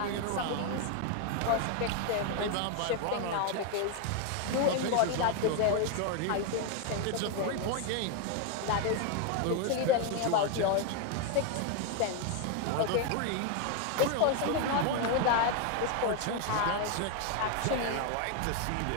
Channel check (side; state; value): both; different; correlation 0.01